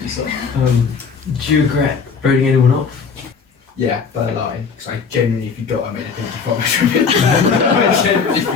say? Do you regret voting anyone off? Yeah, by a line, because I genuinely forgot I made a pinky promise from it. I genuinely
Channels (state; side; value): quieter; right; 5.6 dB